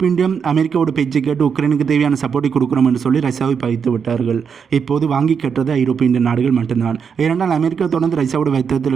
இந்தியம் அமெரிக்காவோட பேச்சை கேட்டு உக்ரைனுக்கு தேவையான சப்போர்ட்டை கொடுக்குறோம் என்று சொல்லி ரஷ்யாவை பகித்து விட்டார்கள். இப்போது வாங்கி கட்டுறது ஐரோப்பிய இந்திய நாடுகள் மட்டும்தான். ஏனென்றால் அமெரிக்கா தொடர்ந்து ரஷ்யாவோட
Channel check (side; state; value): left; quieter; 6.6 dB